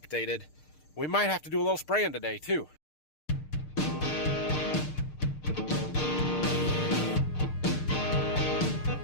We might have to do a little spraying today, too.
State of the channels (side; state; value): right; late; 6.6 ms